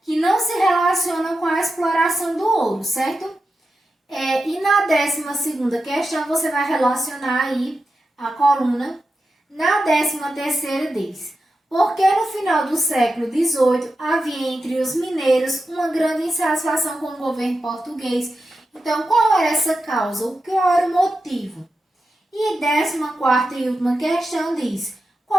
que não se relacionam com a exploração do ouro, certo? E na 12ª questão, você vai relacionar aí a coluna. Na 13ª diz, porque no final do século XVIII havia entre os mineiros uma grande insatisfação com o governo português. Então, qual era essa causa? Qual era o motivo? E 14ª e última questão diz,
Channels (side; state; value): both; normal; correlation 0.90